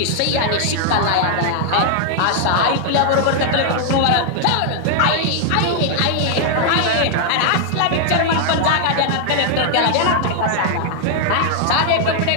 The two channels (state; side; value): different; both; correlation 0.00